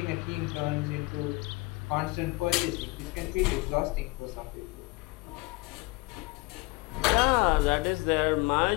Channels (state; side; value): quieter; right; 24.1 dB